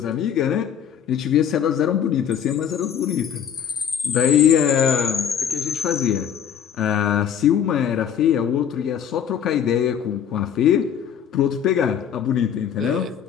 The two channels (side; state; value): right; quieter; 8.7 dB